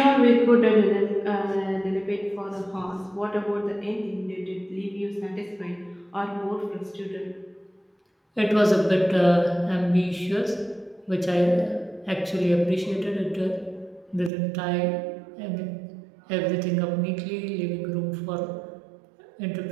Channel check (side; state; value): left; drops out; at 14.3 s